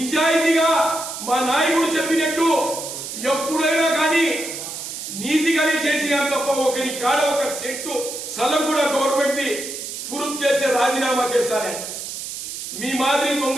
మా నాయకుడు చెప్పినట్టు ఎప్పుడైనా కానీ నీతిగానే చేసినా తప్ప ఒకరి కాడ ఒక సెట్టు స్థలం కూడా గవర్నమెంట్ ది ఫురుప్ చేసే రాజీనామా చేస్తానే. మీ మాదిరి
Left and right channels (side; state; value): right; noise; hiss, 8 dB below the sound